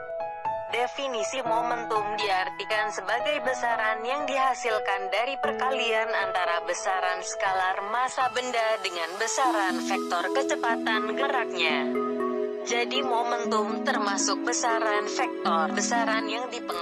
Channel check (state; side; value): identical; both; correlation 1.00